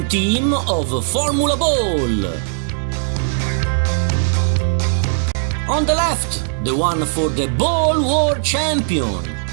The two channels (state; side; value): silent; left; digital silence